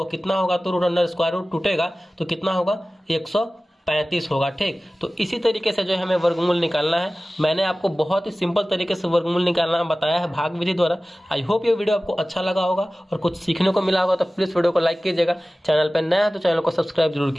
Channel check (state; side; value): normal; both; correlation 0.97